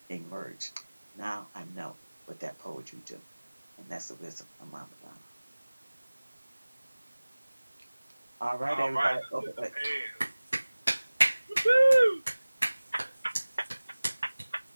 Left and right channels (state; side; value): inverted; both; correlation -1.00